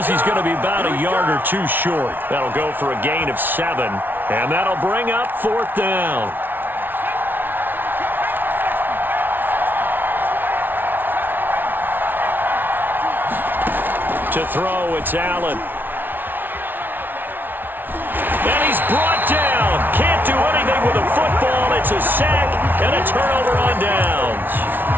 he's going to be about a yard or 2 short. That'll go for a gain of 7, and that'll bring up 4th down. To throw, it's Allen. And he's brought down. Can't do anything with the football. It's a sack and a turnover on downs.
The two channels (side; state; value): left; late; 0.093 ms